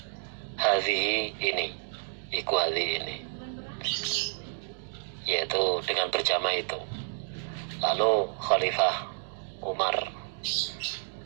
Hadhihi ini, ini, yaitu dengan berjamaah itu. Lalu Khalifah Umar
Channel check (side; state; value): left; silent; digital silence